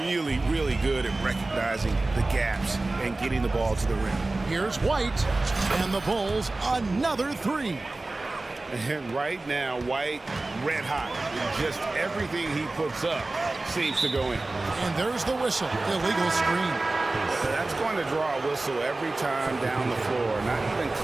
Really, really good at recognizing the gaps and getting the ball to the rim. Here's White, and the Bulls another 3. And right now, White red hot. Just everything he puts up seems to go in. And there's the whistle. Illegal screen. That's going to draw a whistle every time down the floor. Not even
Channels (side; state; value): left; quieter; 3.1 dB